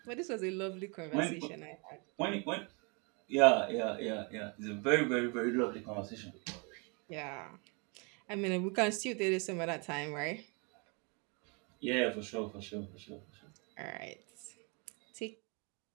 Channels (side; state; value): left; quieter; 33.0 dB